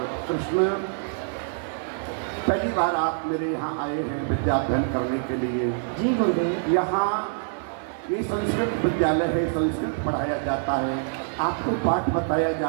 कृष्ण, पहली बार आप मेरे यहाँ आए हैं विद्या अध्ययन करने के लिए। जी गुरुदेव। यहाँ ये संस्कृत विद्यालय है, संस्कृत पढ़ाया जाता है, आपको पाठ बताया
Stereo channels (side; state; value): left; silent; 61 dB below the other